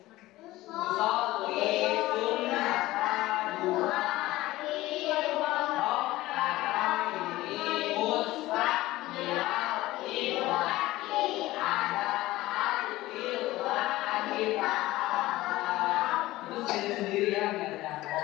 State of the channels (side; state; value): right; quieter; 17.5 dB